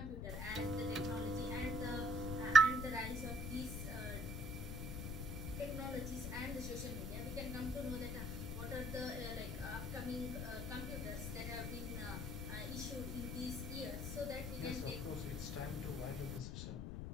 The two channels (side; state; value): left; noise; rumble, 4 dB below the sound